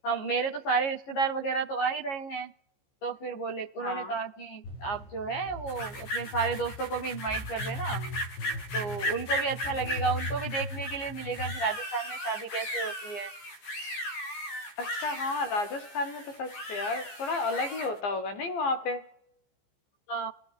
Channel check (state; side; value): late; right; 15 ms